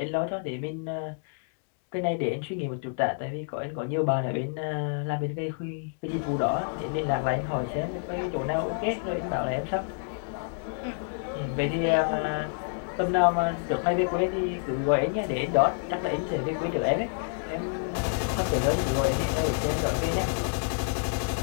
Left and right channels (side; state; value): right; silent; digital silence